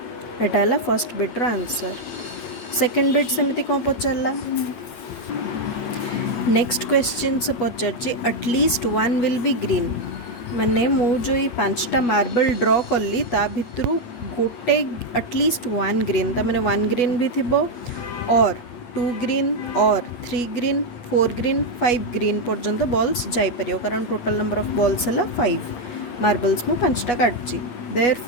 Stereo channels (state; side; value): late; right; 8.2 ms